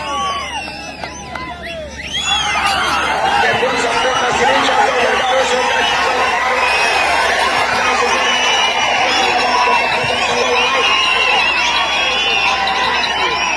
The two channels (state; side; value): identical; both; correlation 1.00